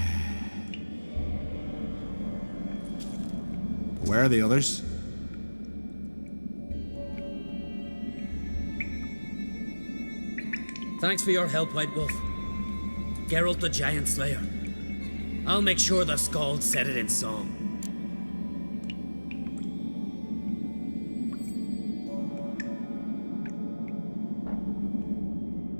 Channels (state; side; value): inverted; both; correlation -1.00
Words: Where are the others? Thanks for your help, White Wolf. Geralt the Giant Slayer. I'll make sure the Skald said it in song.